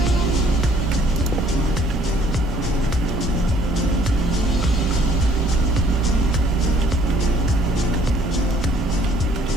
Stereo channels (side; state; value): both; normal; correlation 0.61